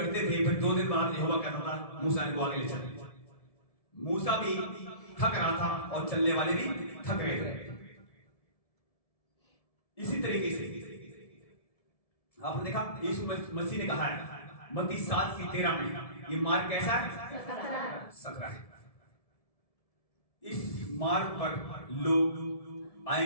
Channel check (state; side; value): late; right; 1.7 ms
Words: थे, फिर 2 दिन बाद यहोवा कहता था मूसा इनको आगे ले चल। मूसा भी थक रहा था और चलने वाले भी थक रहे थे। इसी तरीके से आपने देखा यीशु मसीह ने कहा है मत्ती 7:13 में, ये मार्ग कैसा है? सकरा है। इस मार्ग पर लोग